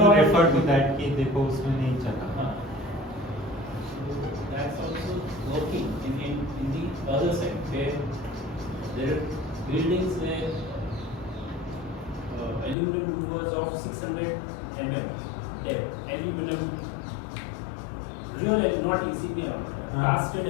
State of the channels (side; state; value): right; drops out; at 12.8 s